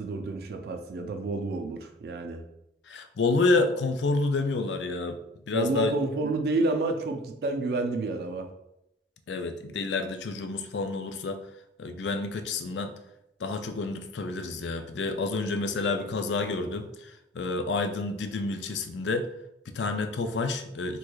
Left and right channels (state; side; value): normal; both; correlation 0.43